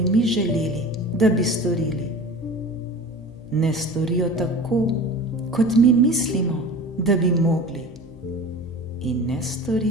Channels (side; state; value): both; normal; correlation 0.37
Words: mi želeli, da bi storili. Ne storijo tako, kot mi mislimo, da bi mogli. In ne